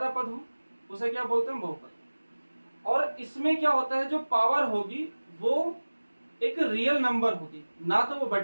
पद हो, उसे क्या बोलते हैं, बहुपद। और इसमें क्या होता है, जो पावर होगी वो एक रियल नंबर होगी, ना तो वो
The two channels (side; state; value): both; inverted; correlation -1.00